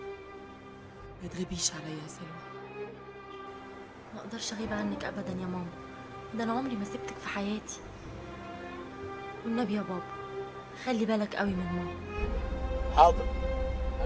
ما تغيبيش عليا يا سلوى. ما اقدرش اغيب عنك ابدا يا ماما، ده انا عمري ما سبتك في حياتي. والنبي يا بابا خلي بالك قوي من ماما. حاضر،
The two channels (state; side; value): identical; both; correlation 1.00